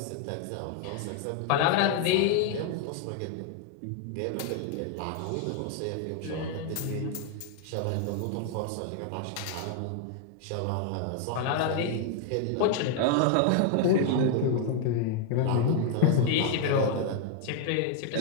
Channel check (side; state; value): both; different; correlation 0.00